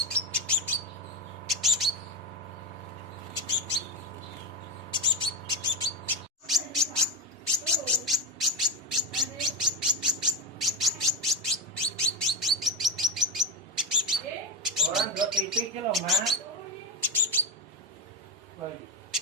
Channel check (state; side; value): normal; both; correlation 0.14